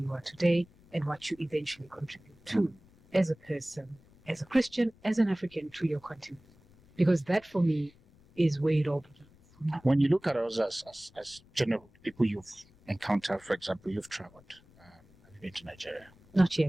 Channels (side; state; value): left; noise; rumble, 27 dB below the sound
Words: you are today and what you eventually contribute to as a person, as a Christian, as an African, to your continent? Because that for me is where it all begins. When you look at us as general people you've encountered, for example, you've traveled. Have you been to Nigeria? Not